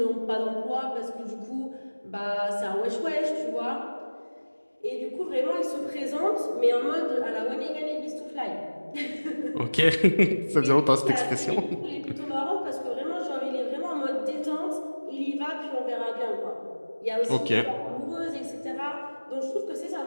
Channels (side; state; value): both; inverted; correlation -1.00